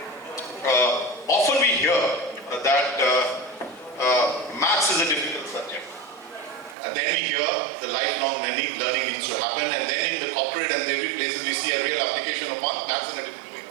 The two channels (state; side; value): drops out; left; at 6.8 s